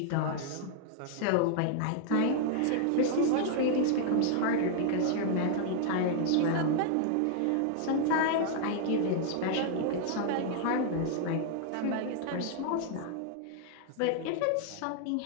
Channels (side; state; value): both; different; correlation 0.00